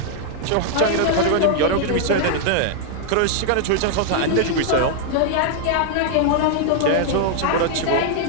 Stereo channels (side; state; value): both; different; correlation -0.01